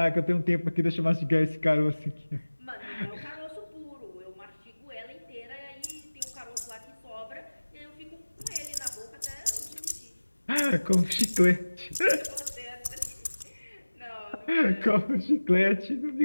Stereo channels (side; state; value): both; inverted; correlation -1.00